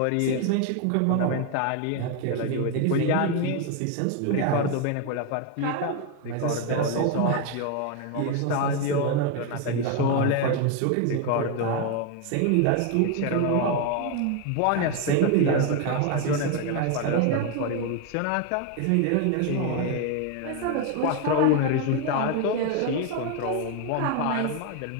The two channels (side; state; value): both; different; correlation 0.01